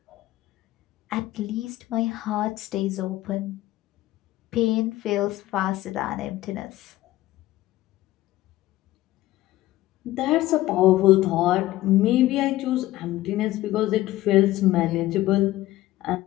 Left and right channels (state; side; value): quieter; right; 16.1 dB